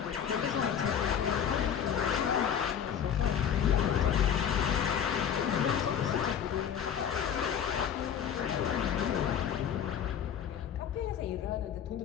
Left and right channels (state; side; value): quieter; right; 8.5 dB